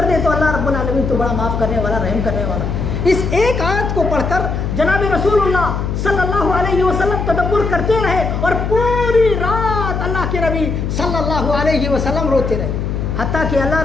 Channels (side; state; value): left; noise; hum, 2 dB below the sound